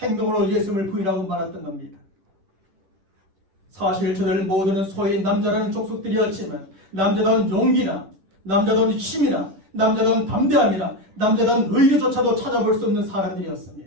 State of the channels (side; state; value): left; late; 10 ms